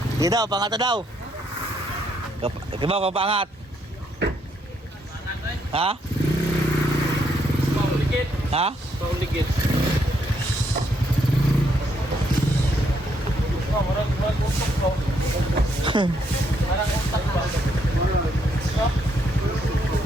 Di daw, pangat na daw. Kibaw, papangat. Ha? Pauligid. Ha? Pauligid. Marang utok ko. Marang utak ba?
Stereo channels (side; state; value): both; normal; correlation 0.74